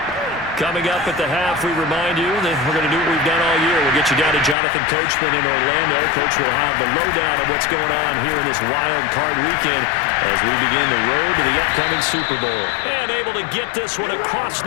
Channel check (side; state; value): right; drops out; at 4.5 s